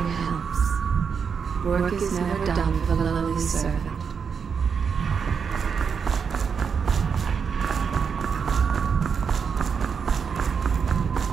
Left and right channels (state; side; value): quieter; left; 6.3 dB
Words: helps. Work is never done for the lowly servant.